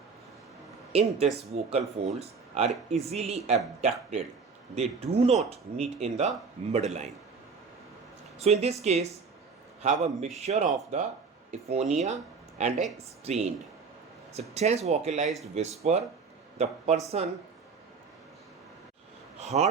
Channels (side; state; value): left; quieter; 5.1 dB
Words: In this, vocal folds are easily abducted. They do not meet in the midline. So in this case, have a mixture of the aphonia and a strained. So tense vocalized whisper, the person